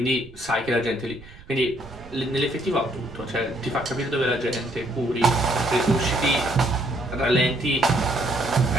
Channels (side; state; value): right; noise; rumble, 20 dB below the sound